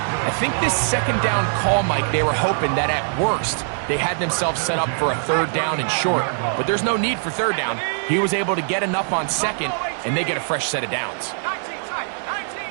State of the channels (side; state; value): left; silent; digital silence